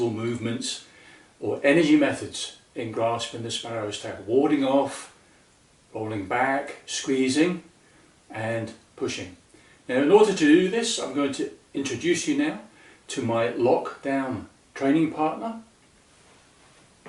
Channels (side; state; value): both; identical; correlation 1.00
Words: movements or energy methods in Grasping the Sparrow's Tail. Warding off, rolling back, squeezing and pushing. Now in order to do this, I'm going to introduce you now to my lockdown training partner.